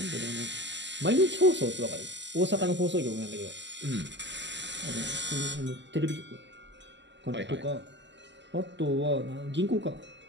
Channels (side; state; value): left; late; 0.53 ms